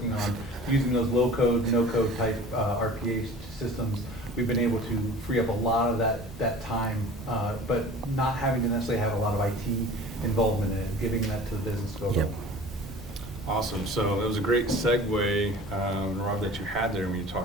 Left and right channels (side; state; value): both; normal; correlation 0.42